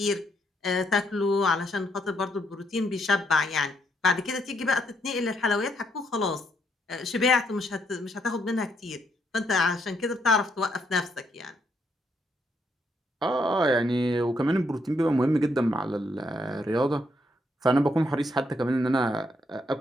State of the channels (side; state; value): both; normal; correlation 0.74